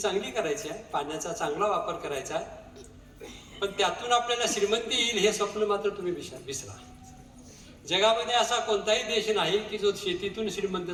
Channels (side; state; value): both; identical; correlation 1.00